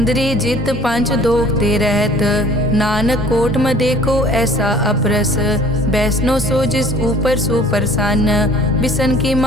जित पंच दोख ते रहत। नानक कोट में देखो ऐसा अपरस, वैष्णो सो जिस ऊपर सो प्रसन्न। बिसन की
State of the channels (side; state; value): both; normal; correlation 0.51